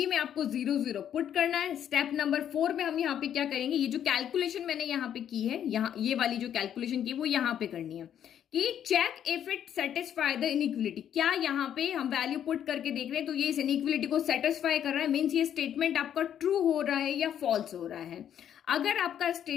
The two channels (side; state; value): right; quieter; 9.7 dB